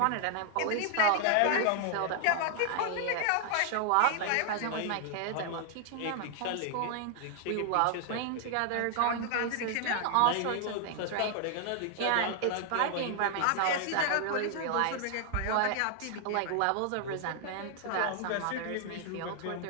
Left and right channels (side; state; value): both; different; correlation 0.00